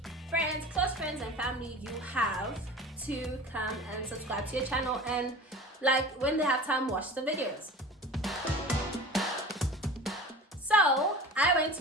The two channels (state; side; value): normal; both; correlation 0.37